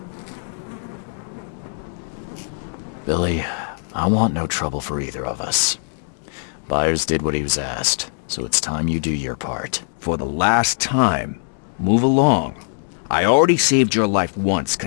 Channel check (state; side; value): silent; right; digital silence